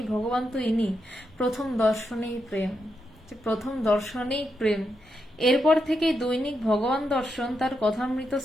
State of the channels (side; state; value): both; normal; correlation 0.84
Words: ভগবান তো ইনি। প্রথম দর্শনেই প্রেম, প্রথম দর্শনেই প্রেম। এরপর থেকেই দৈনিক ভগবান দর্শন তার কথামৃত